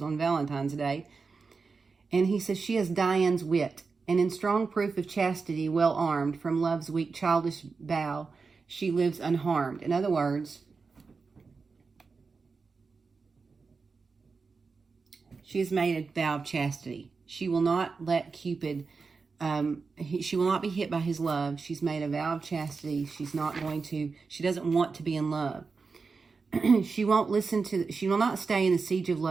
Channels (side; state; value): left; quieter; 4.7 dB